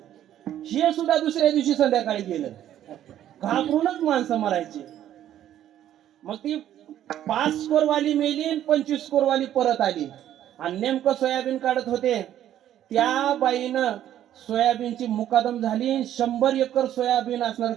हे सुद्धा दुसऱ्या दिवशी संध्याकाळी गेलं. घाबरूनच माणसं मरायची. मग ती 5 स्कोरवाली मेली आणि 25 स्कोरवाली परत आली आणि नेमकं सोयाबीन काढत होते. त्या बाईनं सोयाबीनची मुकादम झाली, 100 एकर सोयाबीन असणार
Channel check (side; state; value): left; quieter; 11.5 dB